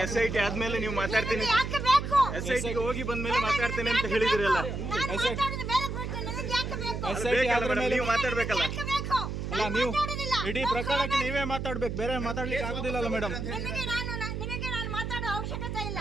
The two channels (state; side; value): noise; right; hum, 4 dB below the sound